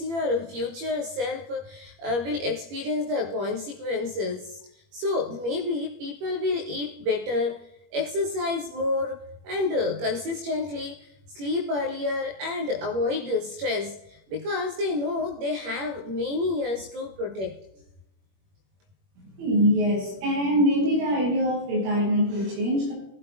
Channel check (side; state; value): left; late; 21 ms